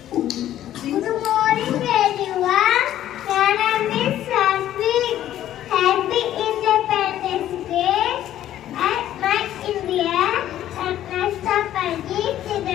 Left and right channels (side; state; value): right; quieter; 12.3 dB